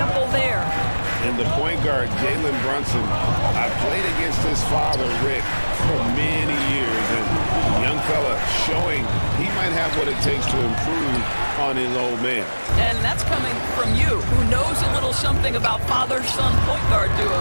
there. And the point guard, Jalen Brunson, I played against his father, Rick, for many years. And young fella showing he might have what it takes to improve on his old man. And that's coming from you, who knows a little something about father-son point guard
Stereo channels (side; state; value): both; inverted; correlation -1.00